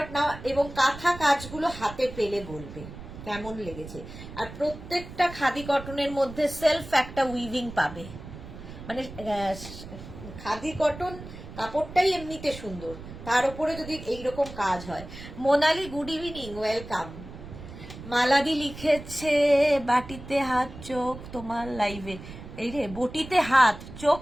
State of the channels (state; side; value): noise; right; rumble, 13 dB below the sound